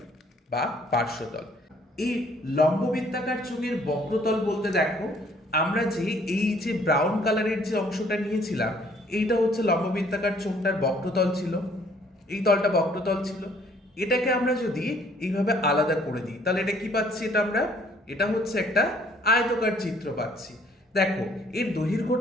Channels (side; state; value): both; normal; correlation 0.61